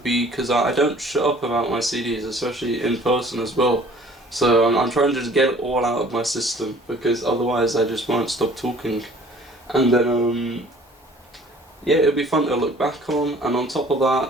be because I don't shut up about my CDs, especially in person as well. So I'm trying to just get it all out of my system, because otherwise I just won't stop talking. And then yeah, it'll be fun to look back on. And on top of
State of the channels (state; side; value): normal; both; correlation 0.52